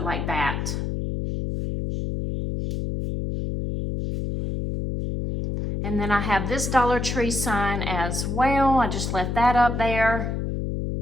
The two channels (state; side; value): noise; left; hum, 2 dB below the sound